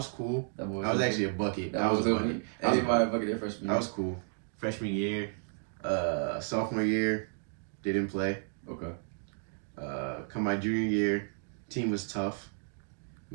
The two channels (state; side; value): silent; left; 56 dB below the other